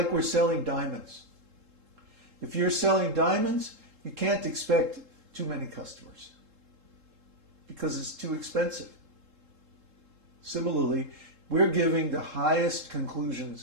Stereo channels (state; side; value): late; left; 3.7 ms